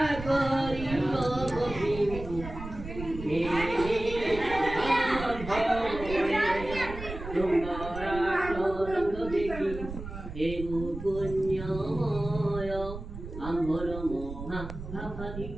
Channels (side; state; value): right; noise; rumble, 10 dB below the sound